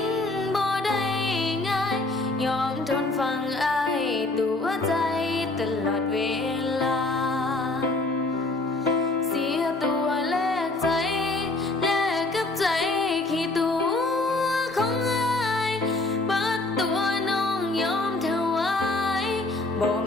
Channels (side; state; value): right; quieter; 3.0 dB